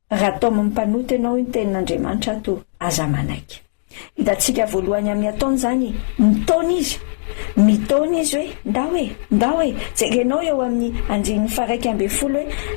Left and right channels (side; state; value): right; silent; digital silence